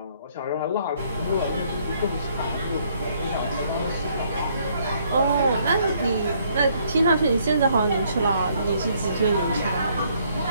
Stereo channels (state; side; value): inverted; both; correlation -0.67